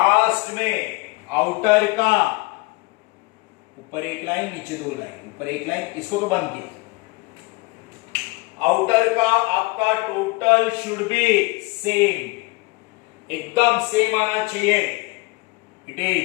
में आउटर का ऊपर एक लाइन, नीचे 2 लाइन, ऊपर एक लाइन, इसको तो बंद किया। आउटर का आपका टोटल शुड बी सेम, एकदम सेम आना चाहिए। इट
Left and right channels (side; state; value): right; quieter; 24.4 dB